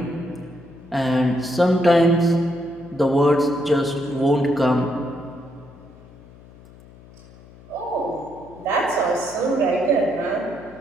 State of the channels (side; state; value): left; noise; hum, 22 dB below the sound